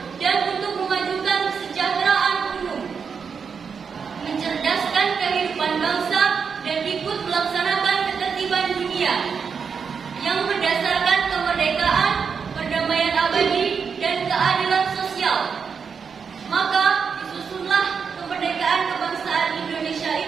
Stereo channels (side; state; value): left; quieter; 6.1 dB